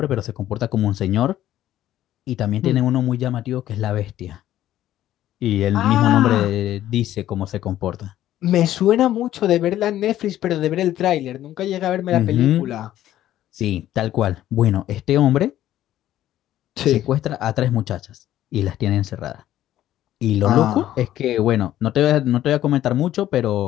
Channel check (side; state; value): right; quieter; 12.9 dB